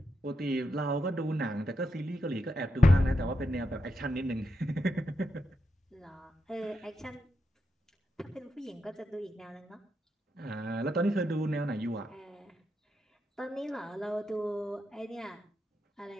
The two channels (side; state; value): both; normal; correlation 0.85